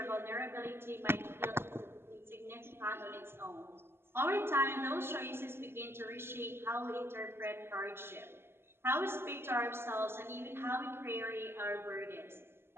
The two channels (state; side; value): late; left; 0.12 ms